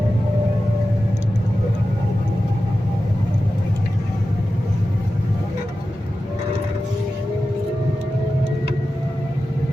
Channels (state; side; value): normal; both; correlation 0.93